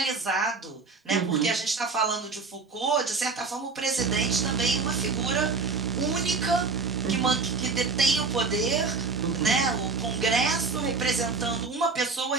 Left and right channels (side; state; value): left; quieter; 4.4 dB